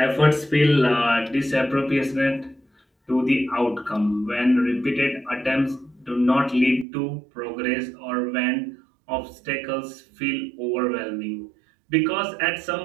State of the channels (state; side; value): drops out; left; at 6.9 s